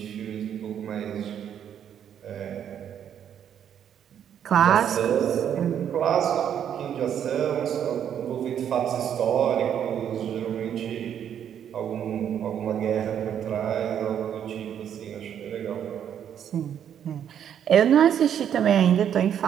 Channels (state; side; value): quieter; left; 9.2 dB